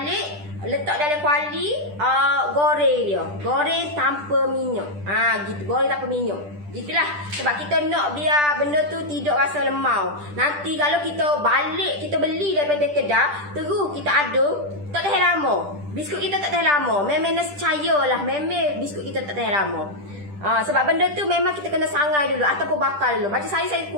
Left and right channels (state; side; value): late; left; 10 ms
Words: letak dalam kuali, goreng dia. Goreng tanpa minyak. Gitu, goreng tanpa minyak. Gitulah. Sebab kita nak biar benda tu tidak rasa lemau. Nanti kalau kita balik, kita beli daripada kedah, terus kita aduk, tak tahan lama. Biskut kita tak tahan lama. Memang nescaya lah. Memang biskut kita tak tahan lama. Sebab benda tu memang kita kena sangai dulu ataupun bakar dulu. Macam saya